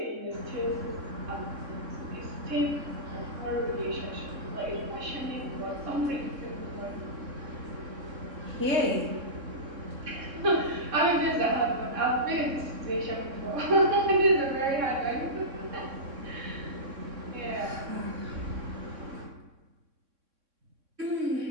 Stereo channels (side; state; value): left; late; 3.6 ms